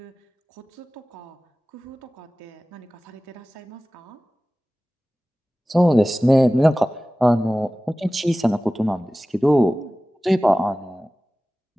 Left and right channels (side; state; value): both; normal; correlation 0.97